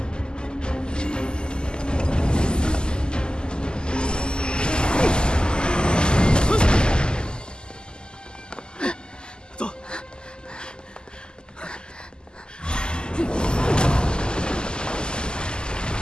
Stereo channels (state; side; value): late; right; 0.046 ms